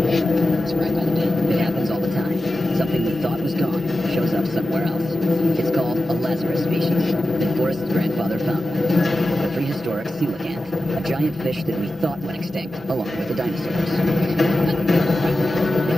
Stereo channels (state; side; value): normal; both; correlation 0.93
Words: It's right by the bin. It happens all the time. Something we thought was gone shows up somewhere else. It's called a Lazarus species that Forrest's grandfather found. A prehistoric coelacanth, a giant fish that we thought went extinct, along with the dinosaurs. The